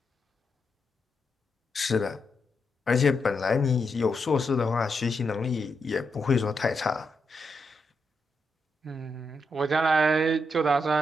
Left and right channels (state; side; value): normal; both; correlation 0.83